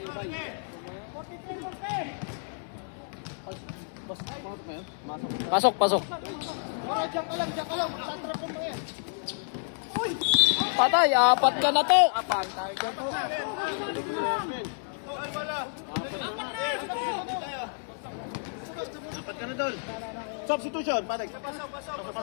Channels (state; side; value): silent; right; digital silence